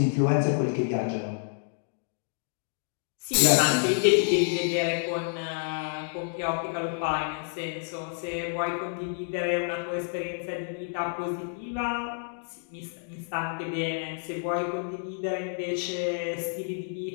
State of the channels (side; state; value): right; silent; digital silence